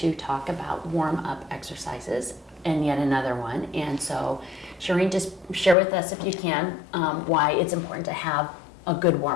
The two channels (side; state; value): right; drops out; at 5.8 s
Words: talk about warm-up exercises and yet another one. And so, Shireen, just share with us, if you can, why it's important to have a good